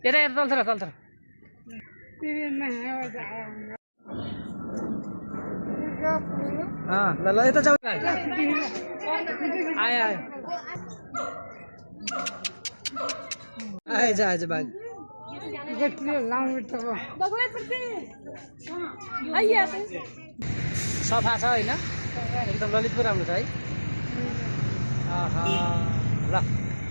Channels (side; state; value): both; inverted; correlation -1.00